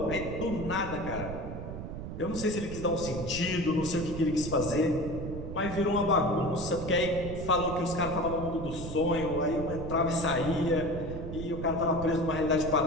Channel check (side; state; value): right; noise; rumble, 8 dB below the sound